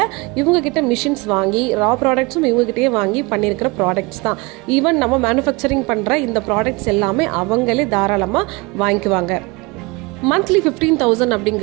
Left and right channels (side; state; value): left; quieter; 26.0 dB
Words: இவங்க கிட்ட மிஷின்ஸ் வாங்கி ரா ப்ராடக்ட்ஸும் இவங்க கிட்டே வாங்கி பண்ணியிருக்கிற ப்ராடக்ட்ஸ் தான். ஈவன் நம்ம மேனுஃபேக்சரிங் பண்ற இந்த ப்ராடக்ட்ஸ் எல்லாமே அவங்களே தாராளமா வாங்கிக்குவாங்க. மந்த்லி 15,000